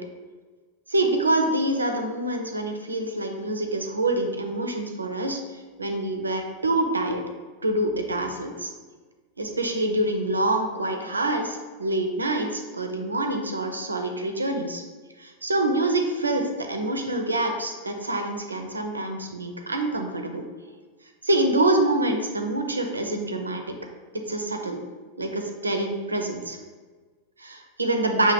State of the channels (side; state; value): both; inverted; correlation -0.37